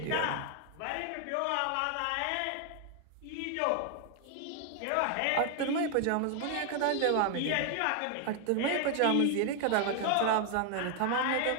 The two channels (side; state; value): both; different; correlation 0.00